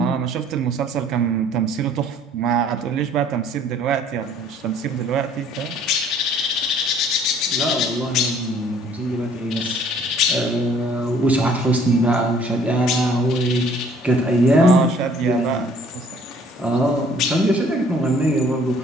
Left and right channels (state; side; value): normal; both; correlation 0.57